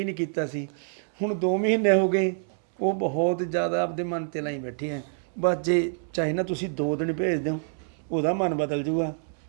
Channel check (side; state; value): left; silent; 59 dB below the other